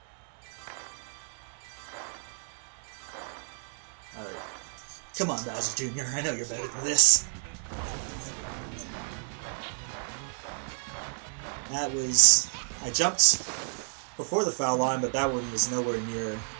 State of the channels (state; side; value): silent; left; 58 dB below the other